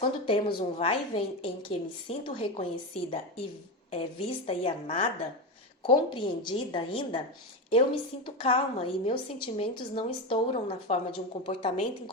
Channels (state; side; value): normal; both; correlation 0.16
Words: temos um vai e vem em que me sinto reconhecida e vista e amada, compreendida ainda, eu me sinto calma e meus sentimentos não estouram na forma de um comportamento